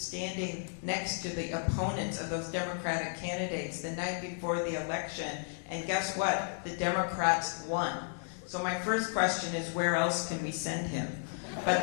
next to the opponents of those Democratic candidates the night before the election, and guess what? The Democrats won. So my first question is, where else can we send him? But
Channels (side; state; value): right; silent; 55 dB below the other